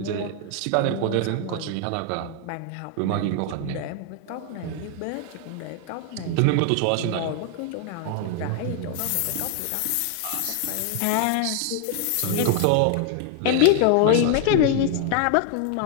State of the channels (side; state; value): both; different; correlation 0.00